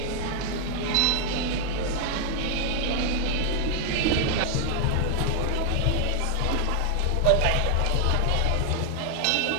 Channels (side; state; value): both; different; correlation 0.00